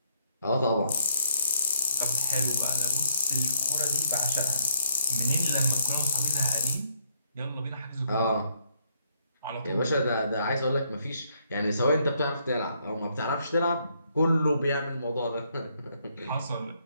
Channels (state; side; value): inverted; both; correlation -0.70